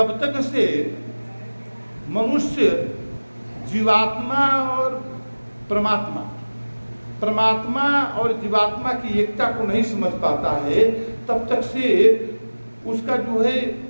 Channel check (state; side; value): inverted; both; correlation -1.00